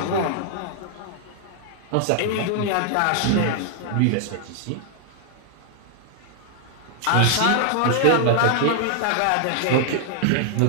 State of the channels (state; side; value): different; both; correlation 0.00